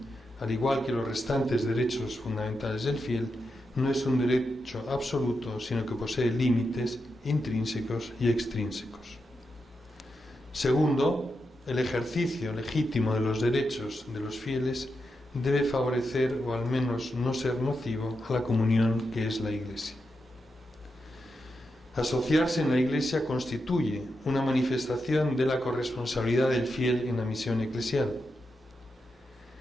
al igual que los restantes derechos fundamentales del fiel, no es un derecho absoluto, sino que posee límites intrínsecos y extrínsecos. Segundo, el ejercicio legítimo de los derechos de los fieles debe favorecer o al menos no ser nocivo a la comunión que es la Iglesia. Asociarse en la Iglesia constituye una manifestación de la corresponsabilidad del fiel en la misión eclesial.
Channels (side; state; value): both; normal; correlation 0.86